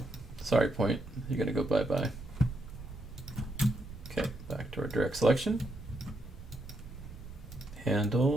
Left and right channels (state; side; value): noise; right; rumble, 14 dB below the sound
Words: Sorry, point. You're going to go bye-bye. Okay, back to our direct selection.